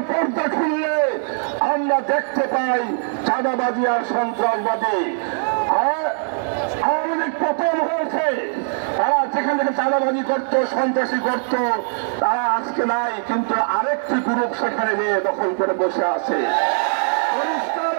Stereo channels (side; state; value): left; silent; digital silence